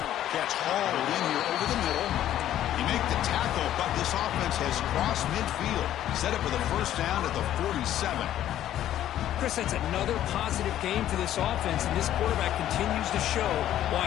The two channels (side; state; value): right; quieter; 12.1 dB